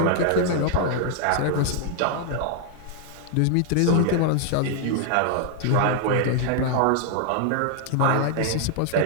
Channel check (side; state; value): both; different; correlation 0.00